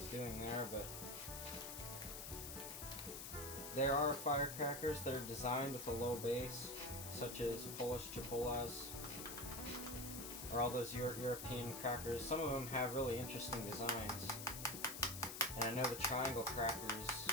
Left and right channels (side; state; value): left; noise; hiss, 7 dB below the sound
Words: doing there, but there are firecrackers that are designed with a low base, such as Polish Chipolas or all those European crackers. Some of them have really interesting designs, and I know the triangle crackers,